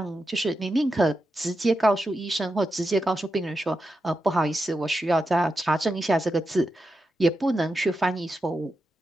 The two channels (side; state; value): both; normal; correlation 0.88